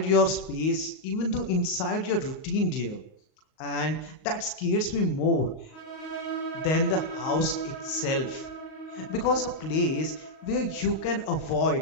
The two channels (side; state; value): right; late; 38 ms